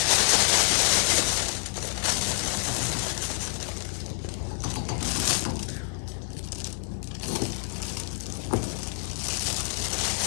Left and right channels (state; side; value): silent; right; 60 dB below the other